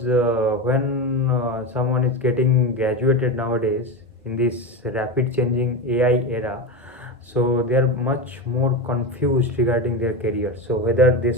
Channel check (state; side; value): normal; both; correlation 0.19